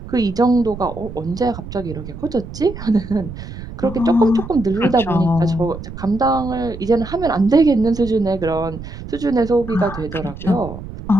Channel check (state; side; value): noise; right; rumble, 11 dB below the sound